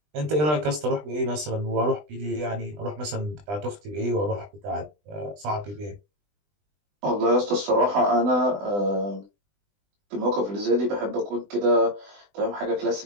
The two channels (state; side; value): late; left; 20 ms